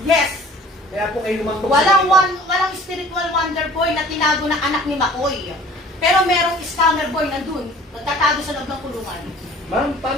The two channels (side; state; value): both; normal; correlation 0.49